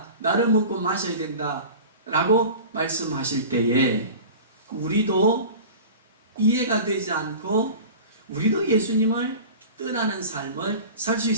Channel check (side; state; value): both; inverted; correlation -0.36